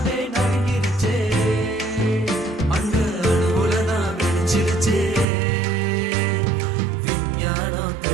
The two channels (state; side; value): drops out; left; at 5.2 s